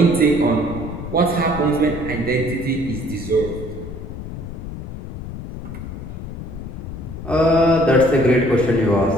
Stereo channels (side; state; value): left; noise; rumble, 9 dB below the sound